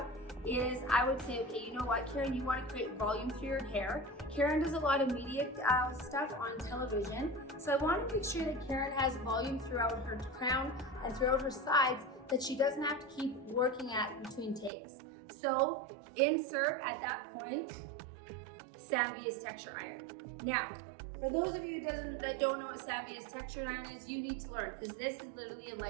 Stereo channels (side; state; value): left; drops out; at 14.7 s